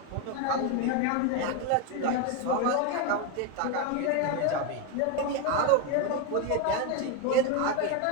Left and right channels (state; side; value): different; both; correlation 0.02